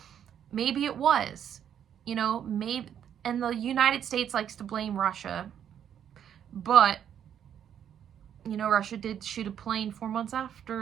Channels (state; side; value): quieter; left; 9.3 dB